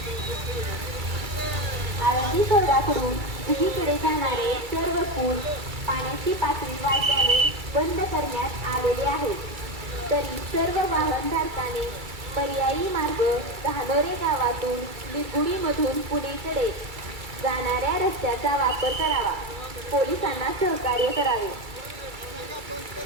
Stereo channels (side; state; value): left; late; 2.3 ms